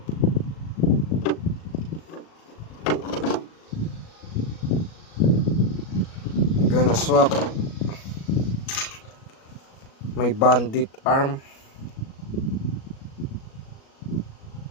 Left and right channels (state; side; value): late; right; 37 ms